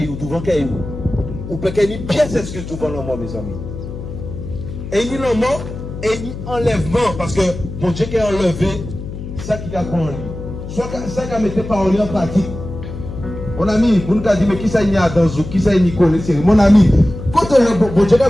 devant caillou. Ou peut qu'il y ait une pièce excuse devant le mort, mes amis. Et il y a le mort et il y a enlèvement, parce que mon Dieu qui a enlevé ça qui a pris en lui. Soit ça qui a mis parole en pratique. Mon ami, vous nous avez dit, mais qui ça y a dans vous, qui ça y connaît, mon ami, quand mon Dieu qui a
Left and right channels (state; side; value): noise; left; hum, 9 dB below the sound